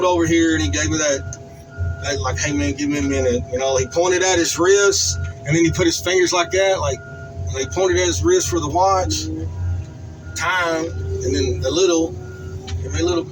over here and he gave me that like, hey man, give me a minute. You know, he pointed at his wrist and then he put his fingers like that, like, and he pointed at his wrist for the watch time, and then the little, give me a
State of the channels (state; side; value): identical; both; correlation 1.00